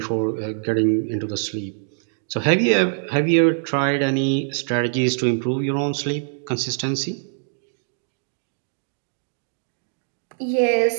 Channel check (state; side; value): silent; left; digital silence